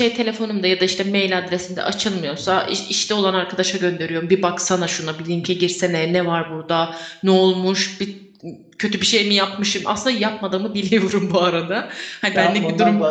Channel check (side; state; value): both; identical; correlation 1.00